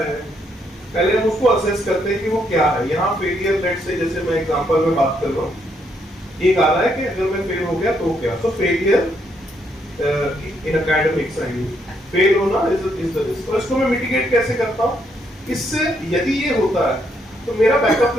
पहले हम उसको असेस करते हैं कि वो क्या है। यहाँ फेलियर, लेट्स से जैसे मैं एग्जांपल में बात कर रहा हूँ, एक आ रहा है कि अगर मैं फेल हो गया तो क्या। तो फेलियर इन एकेडमिक्स फेल होना इज द रिस्क। और इसको मैं मिटिगेट कैसे करता हूँ? इससे यदि ये होता है तो मेरा बैकअप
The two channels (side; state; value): both; normal; correlation 0.74